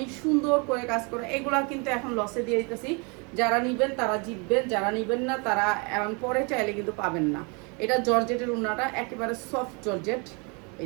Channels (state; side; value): quieter; left; 32.3 dB